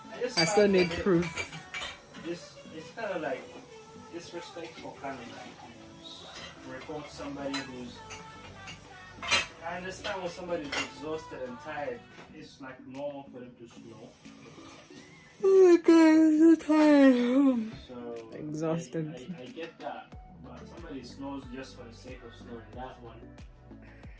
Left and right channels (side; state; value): both; identical; correlation 1.00